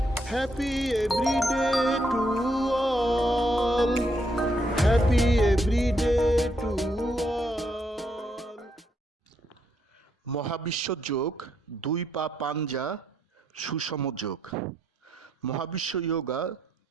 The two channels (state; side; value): normal; both; correlation 0.76